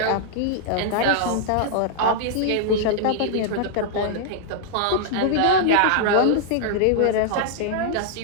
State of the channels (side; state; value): both; different; correlation -0.01